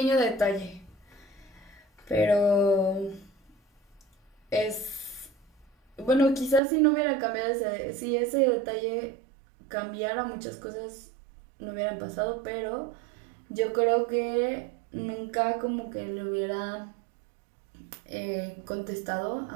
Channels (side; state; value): left; drops out; at 6.6 s